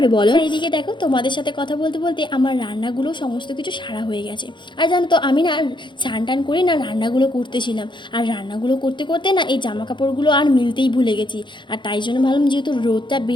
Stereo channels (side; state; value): right; late; 0.23 ms